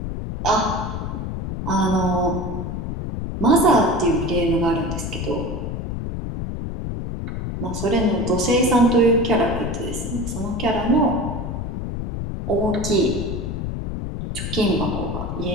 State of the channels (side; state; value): left; noise; rumble, 4 dB below the sound